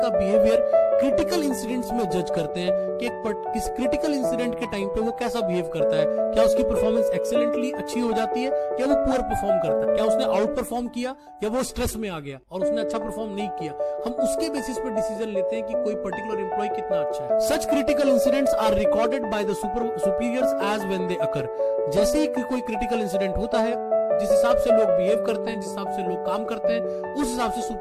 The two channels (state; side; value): identical; both; correlation 1.00